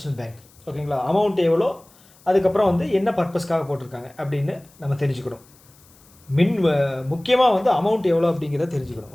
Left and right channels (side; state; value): left; noise; hiss, 28 dB below the sound